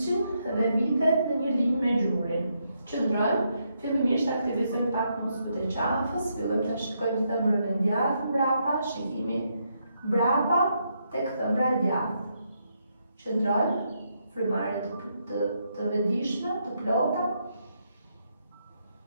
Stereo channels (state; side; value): inverted; both; correlation -0.78